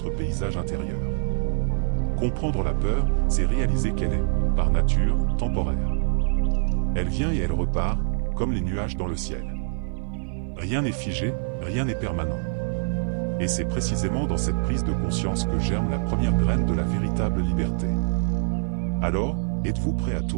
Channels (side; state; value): left; silent; 55 dB below the other